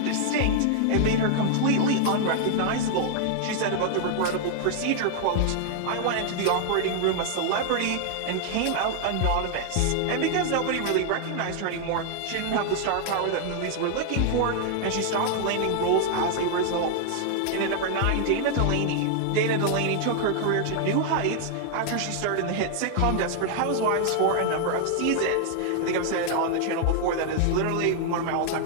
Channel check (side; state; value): both; different; correlation 0.00